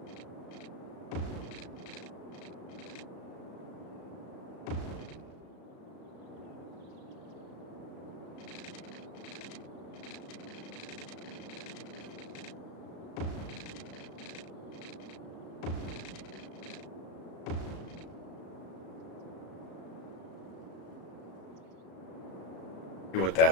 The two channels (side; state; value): right; late; 35 ms